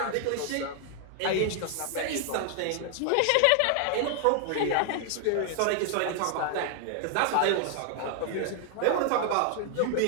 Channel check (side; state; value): both; different; correlation 0.00